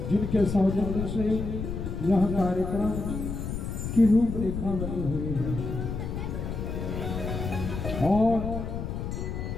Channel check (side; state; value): left; noise; rumble, 4 dB below the sound